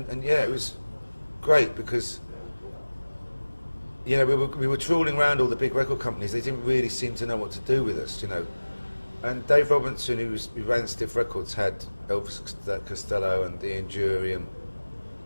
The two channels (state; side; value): inverted; both; correlation -1.00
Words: yeah, it was great because, you know, we were trawling around all the big record companies. They didn't really seem to know what to do with us, you know. And Dave Robinson, who ran Stiff Records, had Elvis Costello and Ian Dury and